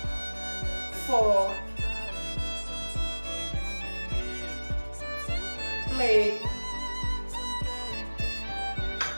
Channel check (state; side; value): inverted; both; correlation -1.00